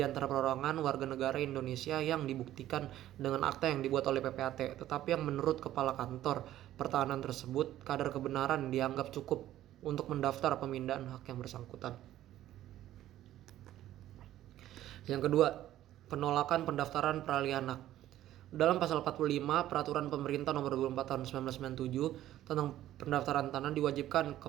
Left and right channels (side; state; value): left; quieter; 13.2 dB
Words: perorangan warga negara Indonesia yang dibuktikan dengan akta yang dibuat oleh PPAT, tetapi yang menurut Kepala Kantor Pertahanan tersebut kadar kebenaran dianggap cukup untuk mendaftar pemindahan hak yang bersangkutan. Yang kedua, penolakan pendaftaran peralihan hak. Dalam pasal 45 Peraturan Pemerintah Nomor 24 Tahun 1997 tentang pendaftaran tanah diwajibkan